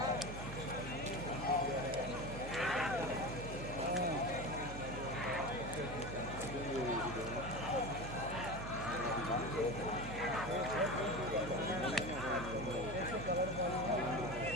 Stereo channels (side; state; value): right; noise; hum, 9 dB below the sound